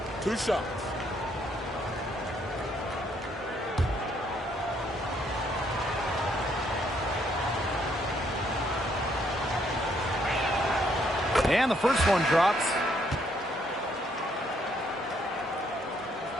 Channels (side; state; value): both; normal; correlation 0.70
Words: 2 shots. And the first one drops.